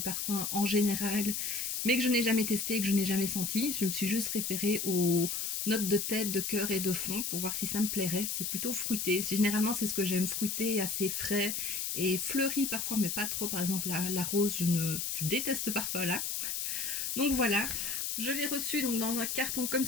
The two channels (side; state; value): left; noise; hiss, 2 dB below the sound